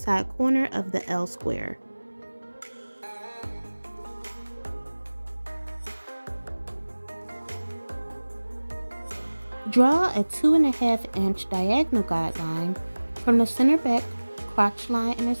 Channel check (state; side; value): inverted; both; correlation -1.00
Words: corner of the L square. Draw a 2.5 inch diagonal guideline from the center back crotch line